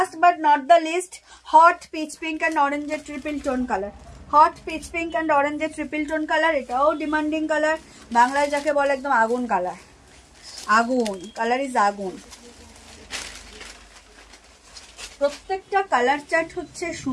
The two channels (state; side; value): identical; both; correlation 1.00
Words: but not the least, hot peach pink and অরেঞ্জের triple tone colour. Hot peach pink and অরেঞ্জের ট্রিপল টোন কালার, এটাও ডিমান্ডিং কালার, বাংলায় যাকে বলে একদম আগুন কালার, আগুন কালার ইজ আগুন। প্রত্যেকটা কালার চার্ট হচ্ছে